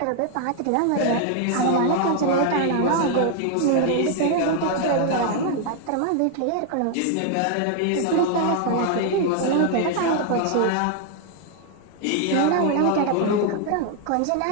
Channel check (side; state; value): both; different; correlation 0.00